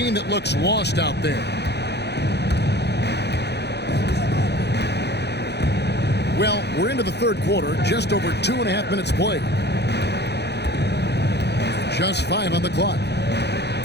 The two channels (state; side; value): late; right; 0.49 ms